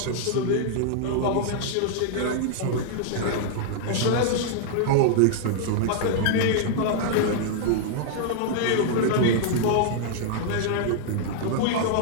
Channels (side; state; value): both; different; correlation -0.01